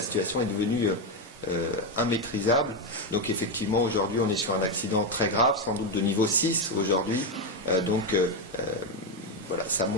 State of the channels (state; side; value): normal; both; correlation 0.07